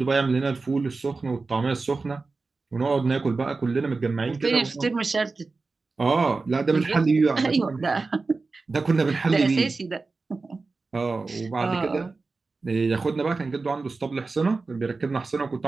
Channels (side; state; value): left; quieter; 3.9 dB